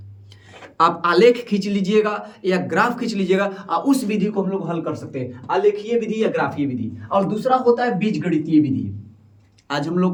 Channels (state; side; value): identical; both; correlation 1.00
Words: आप आलेख खींच लीजिएगा या ग्राफ खींच लीजिएगा और उस विधि को हम लोग हल कर सकते हैं, आलेखीय विधि या ग्राफीय विधि। और दूसरा होता है बीजगणितीय विधि। आज हम लोग